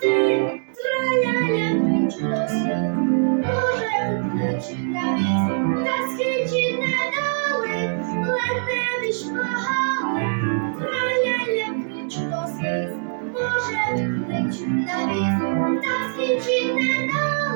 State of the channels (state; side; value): silent; left; digital silence